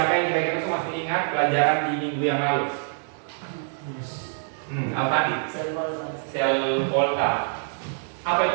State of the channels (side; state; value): left; silent; 61 dB below the other